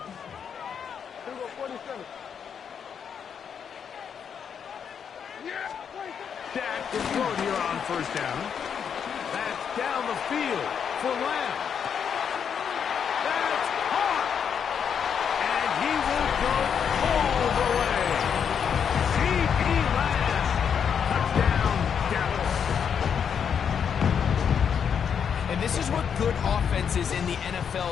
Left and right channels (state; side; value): quieter; right; 7.4 dB